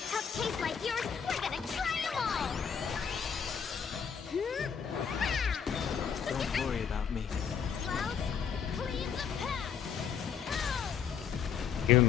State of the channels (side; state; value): right; quieter; 7.3 dB